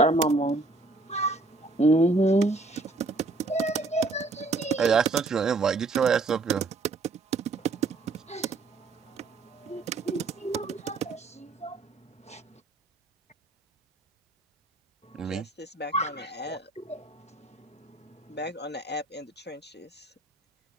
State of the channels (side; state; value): left; quieter; 3.3 dB